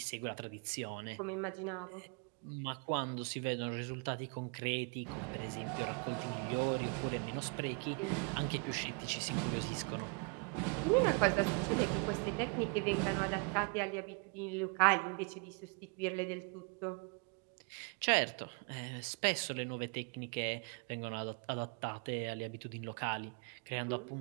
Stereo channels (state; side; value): quieter; left; 34.4 dB